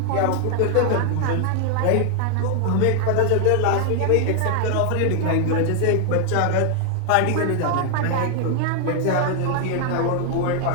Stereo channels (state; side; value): different; both; correlation 0.00